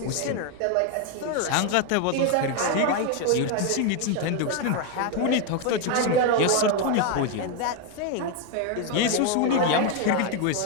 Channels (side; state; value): both; different; correlation 0.01